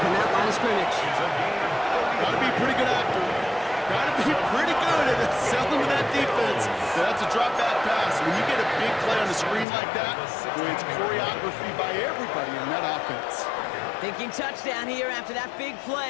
from that line of scrimmage. Gotta be pretty good actor. Gotta be pretty good at selling to that defense. That's a drop back pass. When you get a big play on the screen like that, boy, it's choreography by everybody on that offense. Thinking touchdown here after that big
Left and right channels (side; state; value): right; drops out; at 9.7 s